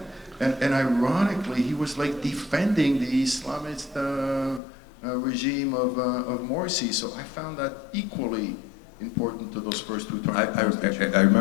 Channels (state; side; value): drops out; right; at 4.6 s